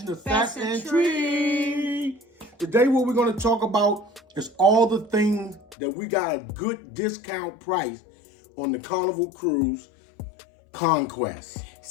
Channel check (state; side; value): drops out; right; at 5.8 s